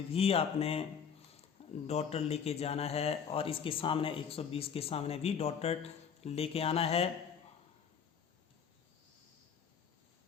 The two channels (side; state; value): right; quieter; 7.1 dB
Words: भी आपने डॉटर लेके जाना है और इसके सामने 120 के सामने भी डॉटर लेके आना है।